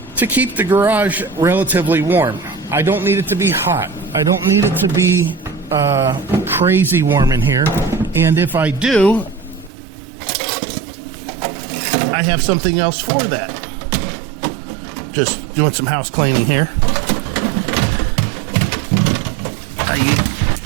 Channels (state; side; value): drops out; left; at 9.7 s